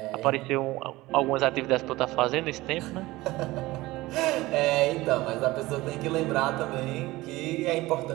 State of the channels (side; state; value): left; quieter; 19.2 dB